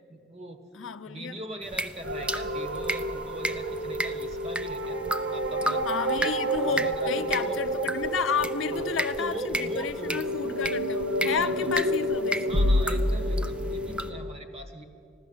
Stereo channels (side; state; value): both; normal; correlation 0.34